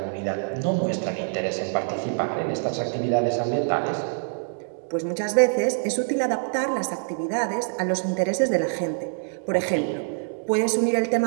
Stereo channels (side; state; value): left; silent; digital silence